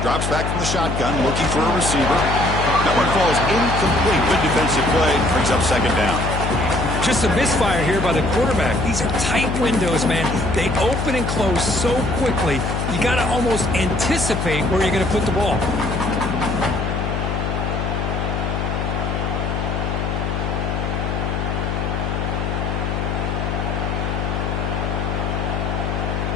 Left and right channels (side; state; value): left; noise; hum, 1 dB below the sound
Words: back from the shotgun, looking for a receiver. That one falls incomplete. Good defensive play. Brings up 2nd down. Just a misfire here by the quarterback. These are tight windows, man. They open and close so quickly, you got to almost anticipate where you're going to put the ball.